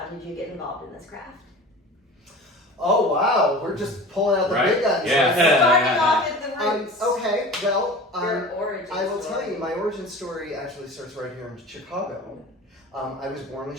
did you get involved in this craft? Oh, wow. We're just pulling out the big guns. Yeah. Starting off at the roots. Okay, well, your origin I will story. tell you, my origin story actually starts right here in Chicago. I was born in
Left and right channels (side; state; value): both; normal; correlation 0.37